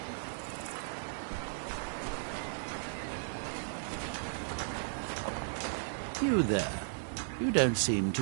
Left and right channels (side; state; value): left; silent; digital silence